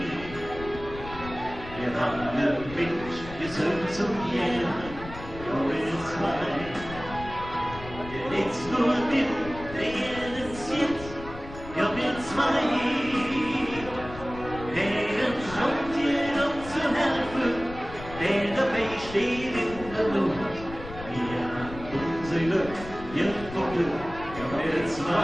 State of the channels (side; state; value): left; noise; rumble, 13 dB below the sound